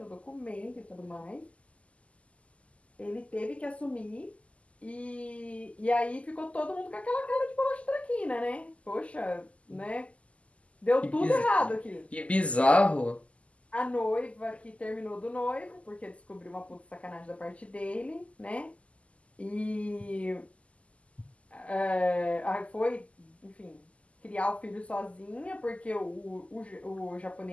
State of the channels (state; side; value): late; right; 0.063 ms